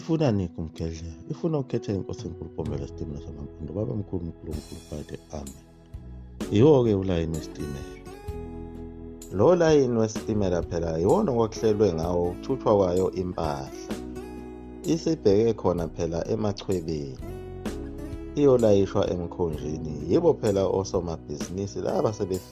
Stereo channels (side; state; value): both; identical; correlation 1.00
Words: nikho umgedlela, ifuna ukukhetha inkosi enkulu Mpombela isitimela samampondo, baba mkhulu uNkulunkulu phakathi, amen. Yiwo-ke ulayini wesitimela. Lo layini wesitimela phela yiwona okwakuhlelwe ngawo ukuthuthwa kwayo impahla. Isibheke khona phela emachwebeni, iyolayishwa emkhonjeni. Yibo phela osomabhizinisi laba